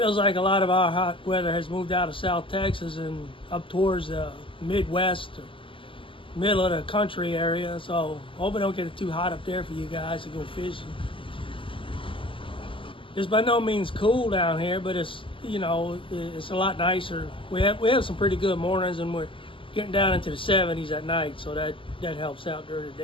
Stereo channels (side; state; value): right; late; 0.25 ms